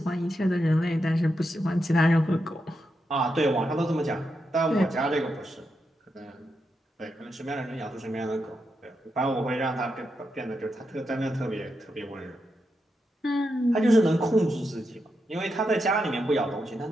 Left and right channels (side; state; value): both; normal; correlation 0.85